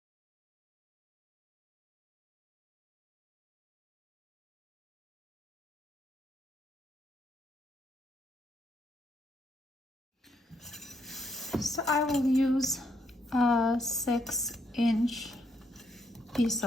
So I will use a 6-inch piece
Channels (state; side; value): normal; both; correlation 0.75